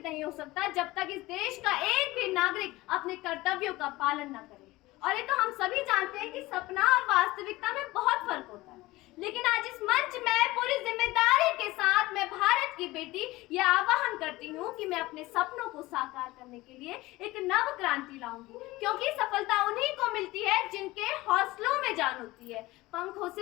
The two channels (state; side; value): quieter; right; 19.4 dB